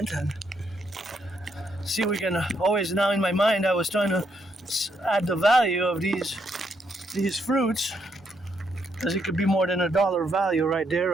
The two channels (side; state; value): both; normal; correlation 0.76